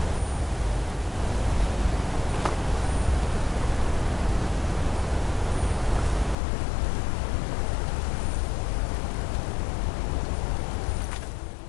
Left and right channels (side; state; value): right; drops out; at 6.4 s